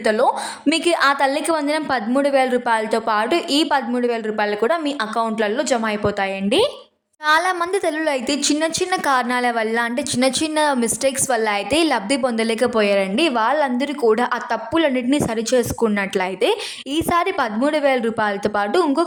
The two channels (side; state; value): both; identical; correlation 1.00